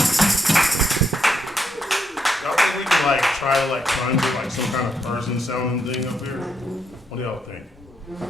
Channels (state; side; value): normal; both; correlation 0.78